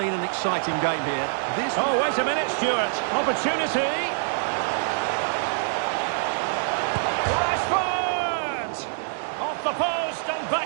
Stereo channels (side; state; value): left; silent; digital silence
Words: an exciting game here. Oh, wait a minute, Stuart. Opportunity. Rashford! Off the post and